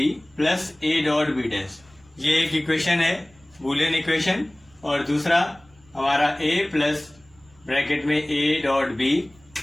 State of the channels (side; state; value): right; noise; rumble, 29 dB below the sound